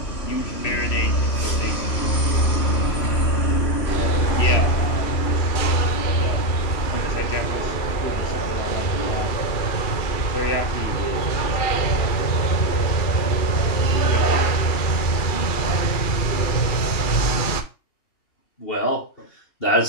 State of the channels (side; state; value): right; late; 2.4 ms